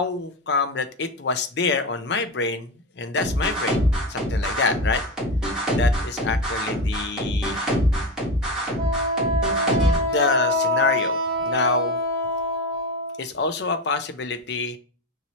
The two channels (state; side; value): normal; both; correlation 0.18